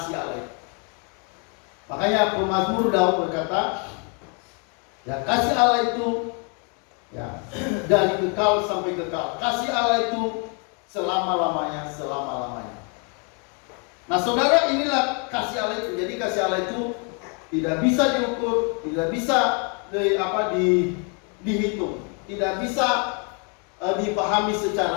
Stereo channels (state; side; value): quieter; right; 36.9 dB